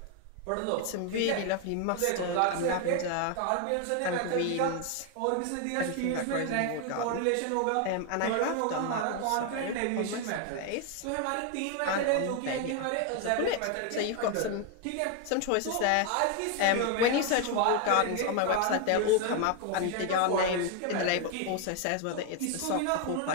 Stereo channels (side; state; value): both; different; correlation 0.01